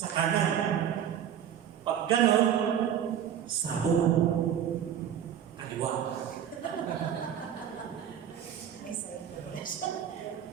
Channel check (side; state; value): left; quieter; 9.5 dB